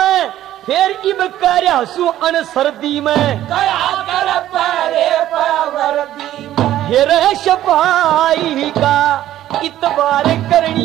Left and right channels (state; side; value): quieter; left; 13.0 dB